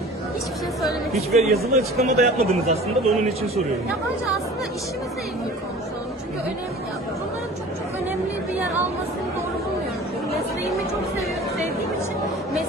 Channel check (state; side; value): normal; both; correlation 0.43